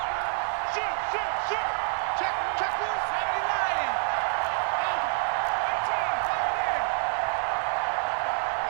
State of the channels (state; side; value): silent; left; 60 dB below the other